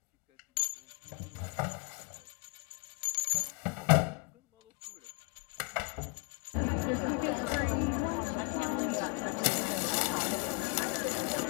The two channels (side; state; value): right; quieter; 32.2 dB